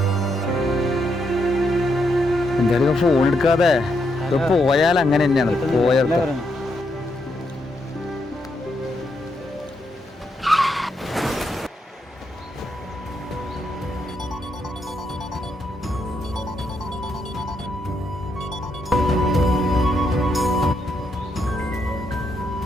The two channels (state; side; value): normal; both; correlation 0.79